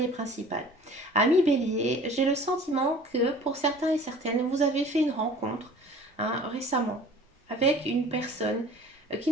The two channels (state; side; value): normal; both; correlation 0.47